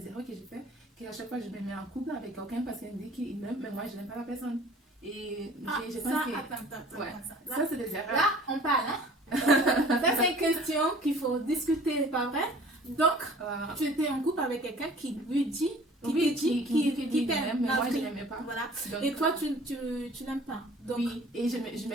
erreurs que j'ai fait, qu'à chaque fois, je me mets en couple avec quelqu'un parce qu'il me dit qu'il m'aime, mais moi, je n'aime pas la personne. Et je pense que. Attends. Ça, c'est des erreurs. Là, on parle, hein? Ça, c'est une question qu'il faut discuter, pas vrai? Donc, tu étais en couple avec quelqu'un qui lui dit. Qui t'aime, mais moi je n'aimais pas. Voilà. Donc, et toi, tu n'aimes pas. Donc, oui, et je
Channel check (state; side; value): normal; both; correlation 0.49